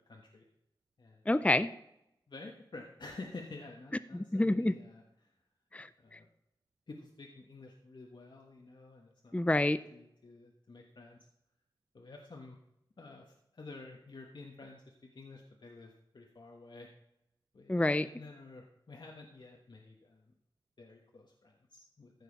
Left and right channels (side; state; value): both; normal; correlation 0.88